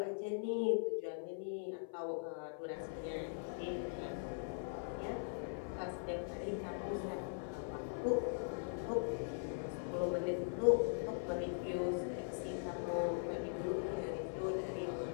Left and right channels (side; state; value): right; silent; 50 dB below the other